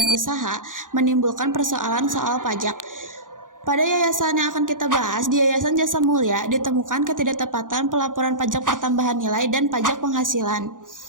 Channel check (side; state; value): left; late; 0.88 ms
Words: usaha menimbulkan persoalan soal pajak. Pada yayasan yang akan kita bahas, di Yayasan Jasa Mulia, ditemukan ketidaktepatan pelaporan pajak pertambahan nilai dan pajak penghasilan.